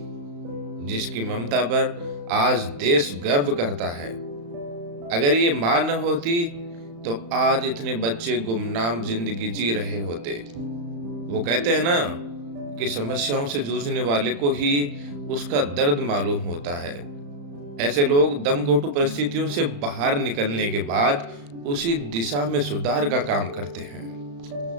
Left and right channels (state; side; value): late; left; 35 ms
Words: जिसकी ममता पर आज देश गर्व करता है। अगर ये माँ न होती तो आज इतने बच्चे गुमनाम जिंदगी जी रहे होते। वो कहते हैं ना कि समस्याओं से जूझने वाले को ही उसका दर्द मालूम होता है। ऐसे लोग दमघोंटू परिस्थितियों से बाहर निकलने के बाद उसी दिशा में सुधार का काम करते हैं।